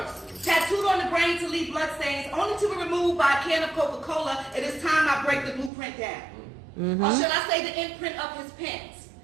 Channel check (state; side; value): drops out; left; at 5.7 s